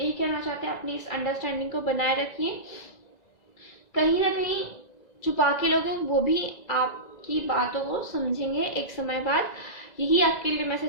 कहना चाहते हैं अपनी इस अंडरस्टैंडिंग को बनाए रखिए। कहीं ना कहीं छुपा के लोग हैं वो भी आपकी बातों को समझेंगे एक समय बाद। यही आपके लिए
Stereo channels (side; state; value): right; late; 2.0 ms